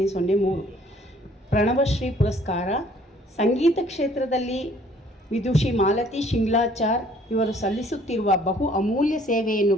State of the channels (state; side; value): normal; both; correlation 0.59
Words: ಪ್ರಣವಶ್ರೀ ಪುರಸ್ಕಾರ. ಸಂಗೀತ ಕ್ಷೇತ್ರದಲ್ಲಿ ವಿದುಷಿ ಮಾಲತಿ ಶಿಂಗ್ಲಾಚಾರ್ ಇವರು ಸಲ್ಲಿಸುತ್ತಿರುವ ಬಹು ಅಮೂಲ್ಯ ಸೇವೆಯನ್ನು